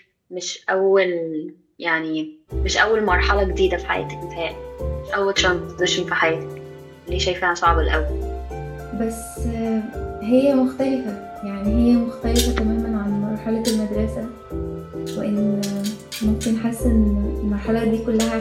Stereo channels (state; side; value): identical; both; correlation 1.00